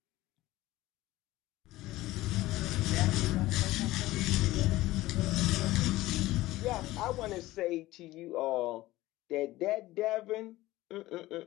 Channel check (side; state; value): right; quieter; 17.6 dB